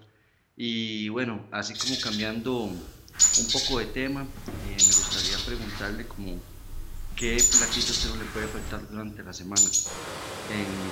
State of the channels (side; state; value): both; identical; correlation 1.00